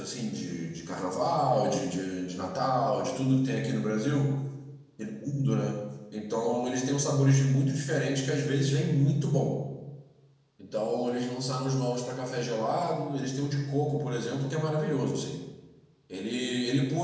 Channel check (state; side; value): identical; both; correlation 1.00